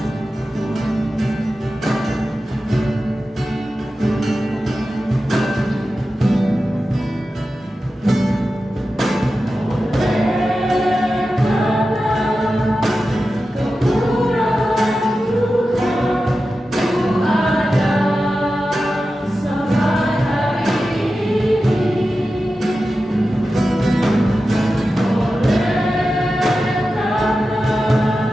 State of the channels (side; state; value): both; normal; correlation 0.93